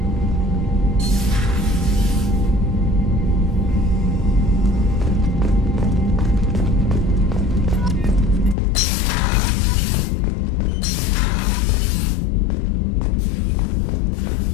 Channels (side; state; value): right; drops out; at 8.6 s